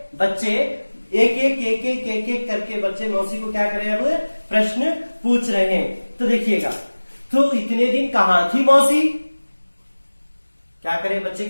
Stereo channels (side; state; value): both; inverted; correlation -1.00